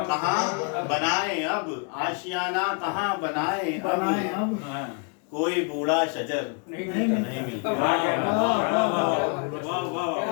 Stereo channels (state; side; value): quieter; right; 37.5 dB